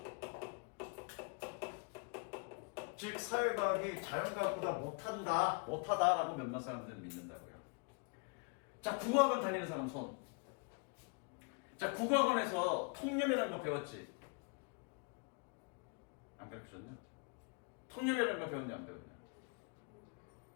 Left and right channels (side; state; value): right; quieter; 35.8 dB